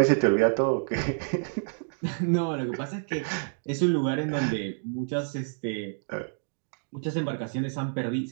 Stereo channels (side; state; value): left; silent; digital silence